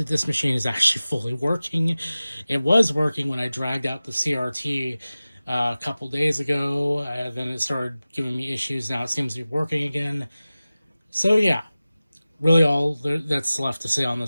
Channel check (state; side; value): inverted; both; correlation -0.97